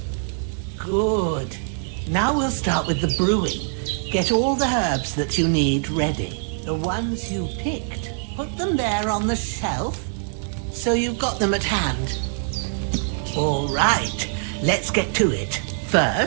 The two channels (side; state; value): left; silent; digital silence